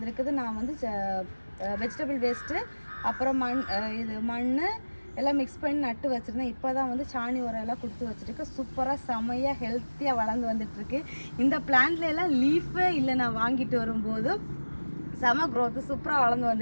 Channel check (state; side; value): inverted; both; correlation -1.00